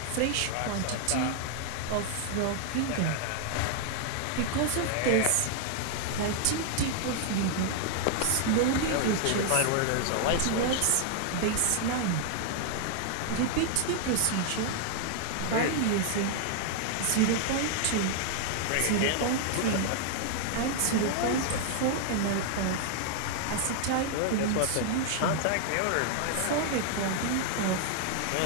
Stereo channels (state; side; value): different; both; correlation 0.00